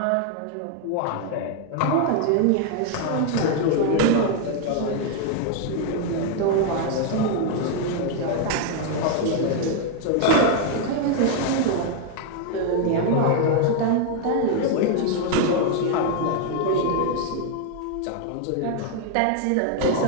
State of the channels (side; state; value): both; different; correlation 0.00